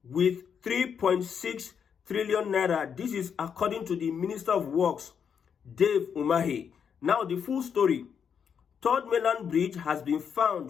with 3.6 trillion naira. This is according to the Minister of Works, Dave Umahi. Now, the full story. Third mainland bridge has been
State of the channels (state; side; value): quieter; right; 7.2 dB